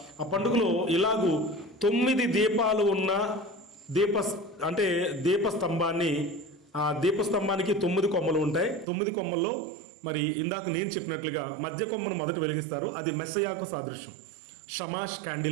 ఆ పండుగలో ఇలాగూ 9 దీపాలు ఉన్న దీపస్తంభాన్ని, ఆ దీపస్తంభానికి 9 కొమ్మలు ఉంటాయి. 9 కొమ్మల్లో మరి ఇందాక నేను చెప్పినట్లుగా మధ్య కొమ్మను మొదట వెలిగిస్తారు. అది మెస్సయాకు సాదృశ్యం, షమాష్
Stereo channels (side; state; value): left; drops out; at 8.8 s